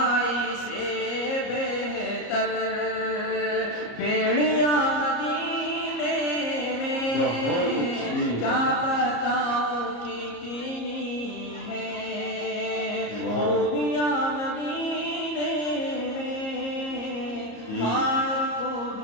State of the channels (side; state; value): right; late; 34 ms